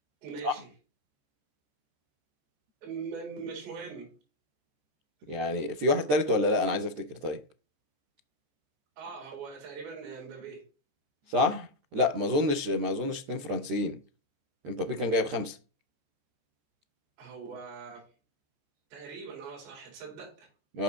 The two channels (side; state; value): left; late; 13 ms